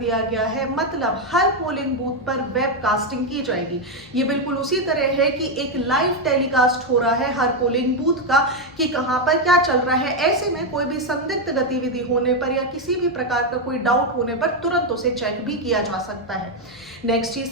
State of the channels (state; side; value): normal; both; correlation 0.04